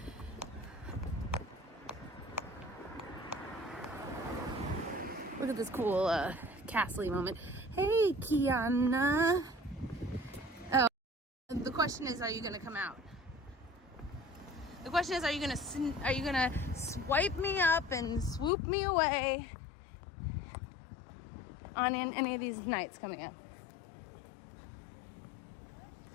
Look at this cool Castle moment. Hey, Kiana. Oh, the question is, are you gonna come out? The question is, are you gonna swipe me up and swoop me away on any of these nights coming up?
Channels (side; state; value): right; drops out; at 18.5 s